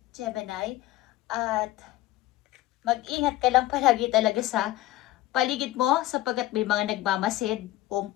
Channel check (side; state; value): right; quieter; 16.0 dB